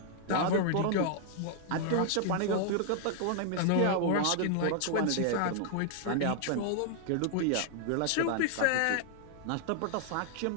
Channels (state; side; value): different; both; correlation 0.00